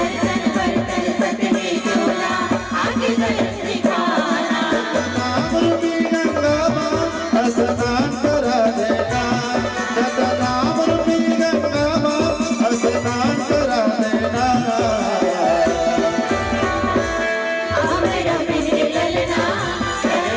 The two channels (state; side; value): identical; both; correlation 1.00